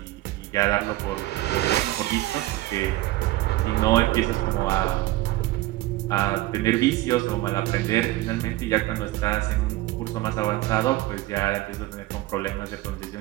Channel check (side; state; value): left; quieter; 17.2 dB